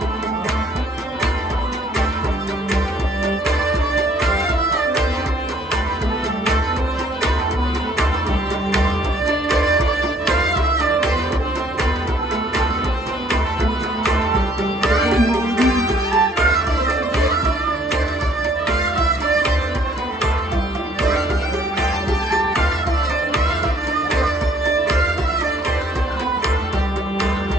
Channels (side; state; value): both; normal; correlation 0.62